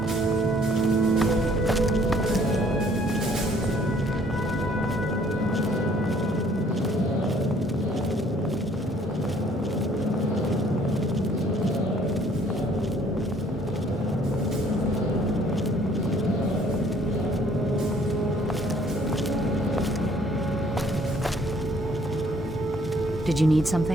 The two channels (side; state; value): both; normal; correlation 0.60